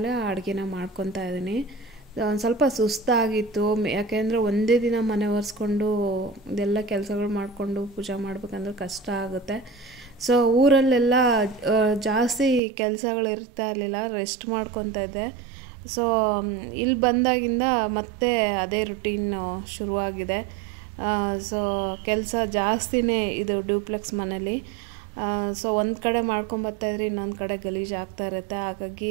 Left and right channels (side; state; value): left; drops out; at 12.6 s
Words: ಅಡುಗೆನ ಮಾಡ್ಕೊತಾ ಇದ್ದೀನಿ. ಒಂದು ಸ್ವಲ್ಪ ಸುಸ್ತಾಗಿತ್ತು, ಯಾಕೆಂದರೆ ಒಂದೇ ದಿನ ಮನೆ ಒರೆಸ್ಕೊಂಡು ಇದೆಲ್ಲ ಕೆಲಸಗಳು ಮಾಡಿಕೊಂಡು ಪೂಜೆ ಮಾಡ್ಬೇಕಂದ್ರೆ ಕಷ್ಟ ಆಗುತ್ತೆ. ಸೊ ಊರಲ್ಲೆಲ್ಲ ಜಾಸ್ತಿ ಕೆಲಸಗಳು ಇರ್ತಾ ಇರಲಿಲ್ಲ, ರೆಸ್ಟ್ ಮಾಡ್ಕೊತಾ ಇದ್ದೆ. ಸೊ ಇಲ್ಲಿ ಬಂದಾಗಿಂದ ಮತ್ತೆ ಅದೇ ರುಟೀನ್ ಶುರುವಾಗಿದೆ. ಸೊ ಕೆಲಸ ಜಾಸ್ತಿನೇ ಇದು ಡ್ಯೂಪ್ಲೆಕ್ಸ್ ಮನೇಲಿ. ಸೊ ಒಂದು ಕಡೆ ಮಾಡ್ಕೊಂಬರ್ತಾಯಿದ್ರೆ ಇನ್ನೊಂದು ಕಡೆ ಗಲೀಜು ಆಗ್ತಾ ಇರುತ್ತೆ.